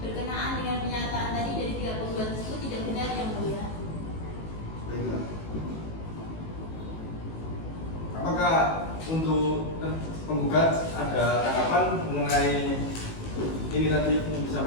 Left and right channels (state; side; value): late; right; 18 ms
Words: dengan pernyataan tadi dari pihak penggugat tersebut tidak benar Yang Mulia. Baiklah. Apakah untuk penggugat ada tanggapan mengenai ini tadi yang